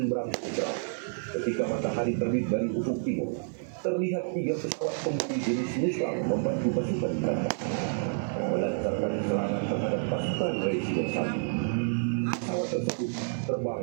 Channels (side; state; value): left; silent; 58 dB below the other